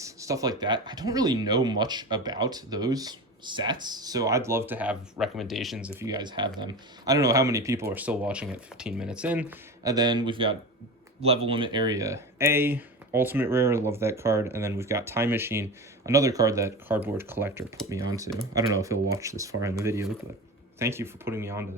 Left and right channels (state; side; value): normal; both; correlation 0.28